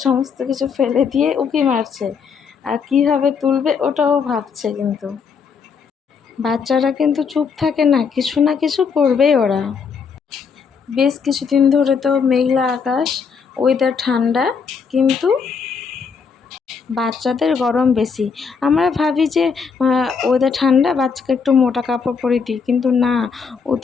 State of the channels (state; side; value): quieter; right; 5.9 dB